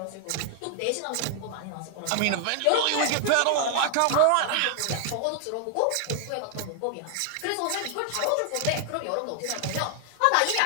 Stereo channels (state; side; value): different; both; correlation 0.00